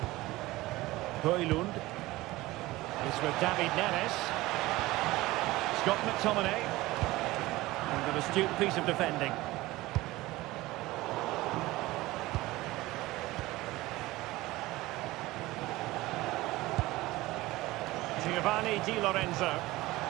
Højlund. It's with David Neres. Scott McTominay. And an astute piece of defending. Giovanni Di Lorenzo.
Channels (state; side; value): quieter; left; 18.9 dB